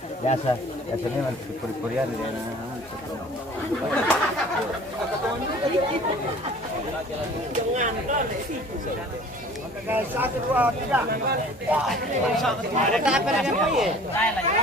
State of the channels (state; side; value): normal; both; correlation 0.47